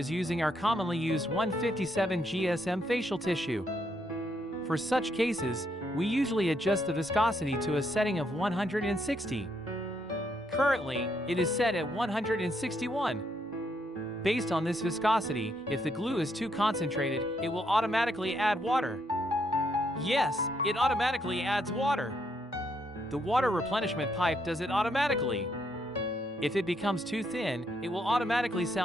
using our commonly used 157 GSM facial tissue. For such cases, we usually adjust the viscosity to a setting of 160. Currently, it is set at 161. Based on this viscosity, if the glue is too concentrated, it will automatically add water. Yes, it automatically adds water. The water replenishment pipe does it automatically. If it becomes too thin, it will automatically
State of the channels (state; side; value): normal; both; correlation 0.75